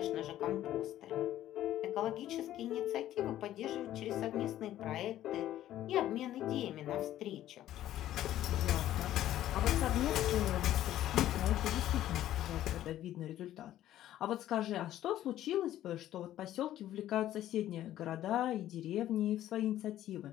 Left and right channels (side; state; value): right; quieter; 12.9 dB